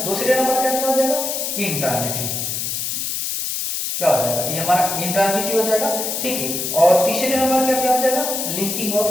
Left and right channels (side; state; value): left; noise; hiss, 2 dB below the sound